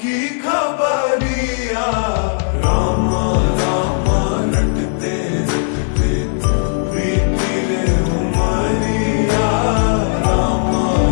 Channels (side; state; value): right; silent; digital silence